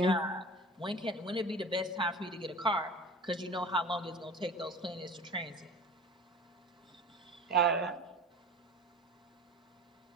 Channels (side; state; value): both; normal; correlation 0.38